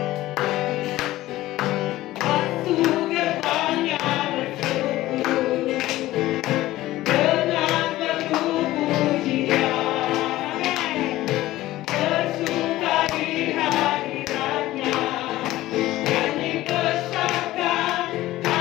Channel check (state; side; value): quieter; right; 16.3 dB